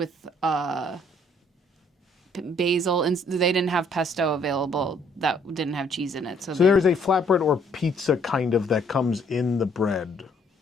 basil, and they didn't have pesto available that didn't have cheese in it. So there is a flatbread or pizza kind of that comes in the bread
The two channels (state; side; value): normal; both; correlation 0.65